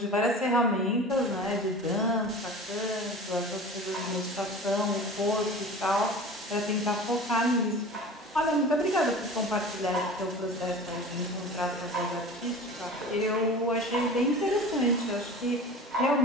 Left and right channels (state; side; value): normal; both; correlation 0.37